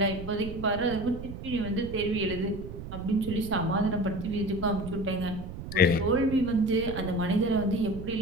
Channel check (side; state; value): right; noise; rumble, 10 dB below the sound